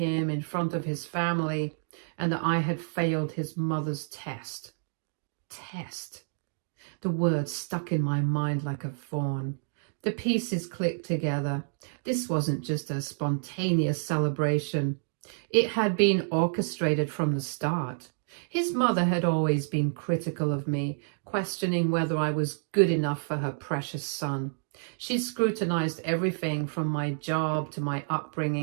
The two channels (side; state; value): left; silent; digital silence